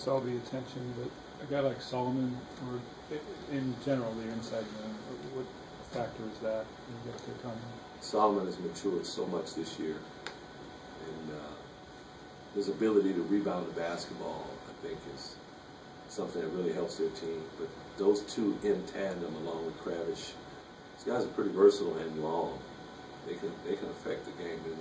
all the attention, but a guy like Solomon, or in general, the inside man, what factor is that you get to come? Solomon has matured so much this year, and his ability to rebound the basketball, I think, is something that really helps their team. But those two in tandem, along with Kravish, these guys are pretty versatile and long. They can affect the game, there's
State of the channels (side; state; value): both; identical; correlation 1.00